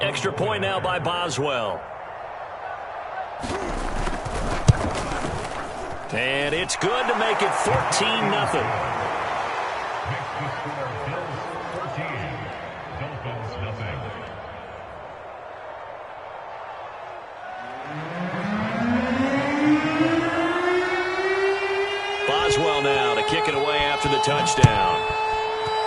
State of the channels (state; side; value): identical; both; correlation 1.00